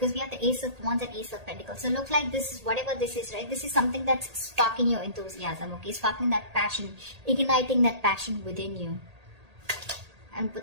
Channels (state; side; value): late; left; 1.8 ms